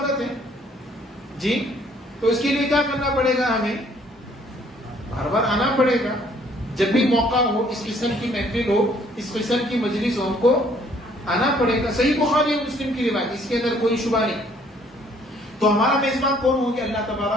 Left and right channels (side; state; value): both; normal; correlation 0.62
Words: ہے جی. تو اس کے لیے کیا کرنا پڑے گا؟ ہمیں بار بار آنا پڑے گا. جب بھی موقع ہو، اس قسم کی محفل ہو، اس قسم کی مجلس ہو، ہم کو آنا پڑے گا. صحیح بخاری اور مسلم کی روایت، اس کے اندر کوئی شبہ نہیں. تو ہمارا میزبان کون ہوں گے؟ اللہ